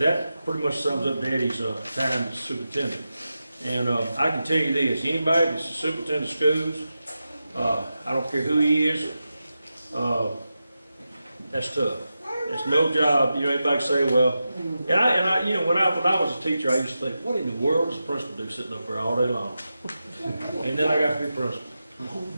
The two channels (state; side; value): inverted; both; correlation -0.91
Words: pretty much sums up Daddy's time as superintendent. And I can tell you this, anybody that's a superintendent of schools, I don't care who he is, that's tough. It's no job. You know, everybody say, well, and I, you know, when I was a teacher, I used to think, what in the world does the principal do sitting up there all day long? And then I got to be principal,